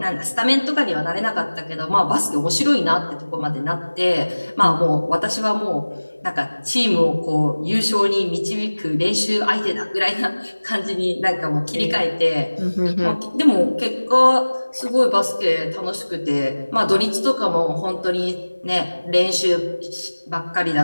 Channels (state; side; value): inverted; both; correlation -1.00